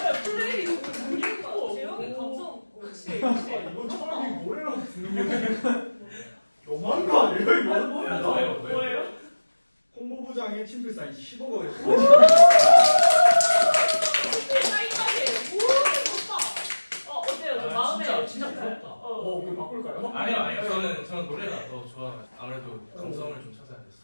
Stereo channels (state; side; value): inverted; both; correlation -1.00